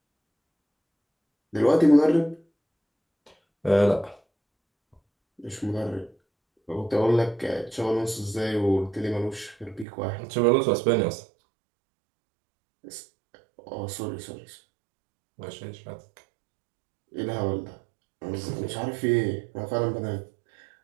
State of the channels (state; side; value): drops out; left; at 9.9 s